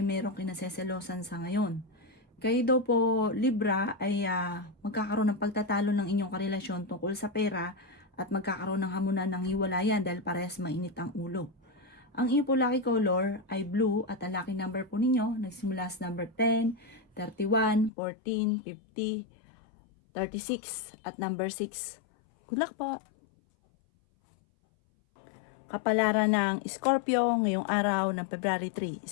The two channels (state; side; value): drops out; right; at 17.9 s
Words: merong kinaseselosan sa ngayon. Kayo daw po, Libra, ay magkakaroon ng pagtatalo ng inyong karelasyon tungkol sa pera at magkakaroon ng hamunan ng hiwalayan dahil parehas mainit ang ulo. Ang inyo po lucky color ay blue at ang lucky number po ninyo nagsimula sa number 10, 31, 14, 50, 36 at number 6. Good luck po! Kapalaran ng Scorpio ngayong araw ng February 3,